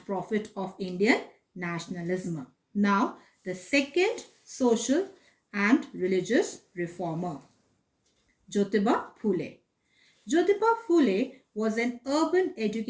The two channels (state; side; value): identical; both; correlation 1.00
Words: prophet of Indian nationalism. Now, the second social and religious reformer, Jyotiba Phule. Jyotiba Phule was an urban